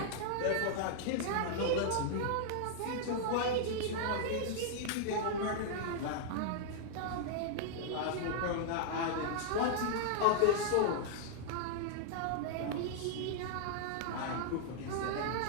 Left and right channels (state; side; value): different; both; correlation -0.01